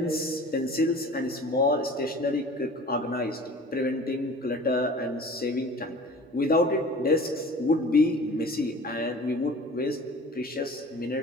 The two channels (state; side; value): normal; both; correlation 0.43